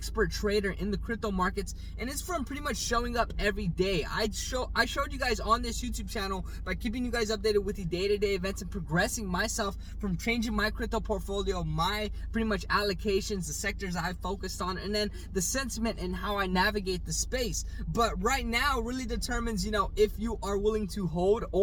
trader in the crypto markets, and it's from pretty much showing up every day. I showed you guys on this YouTube channel by keeping you guys updated with the day-to-day events and progressing myself from changing my crypto portfolio, my pretty much allocations, the sectors I focused on, and then the sentiment and how I navigate the space. But right now really determines, if you are willing to hold,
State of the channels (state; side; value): identical; both; correlation 1.00